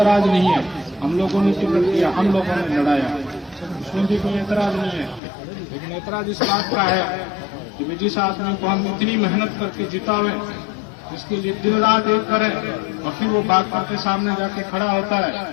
नहीं है। हम लोगों ने टिकट दिया, हम लोगों ने लड़ाया, उसमें भी कोई एतराज नहीं है। लेकिन एतराज इस बात का है कि जिस आदमी को हम इतनी मेहनत करके जितावे, जिसके लिए दिन रात एक करें, और फिर वो बात करके सामने जाके खड़ा होता है,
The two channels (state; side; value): drops out; right; at 5.2 s